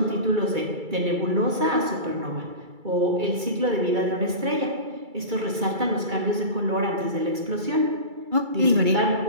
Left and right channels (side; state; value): left; late; 2.3 ms